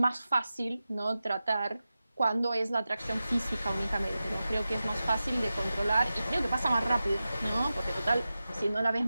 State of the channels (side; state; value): both; inverted; correlation -0.94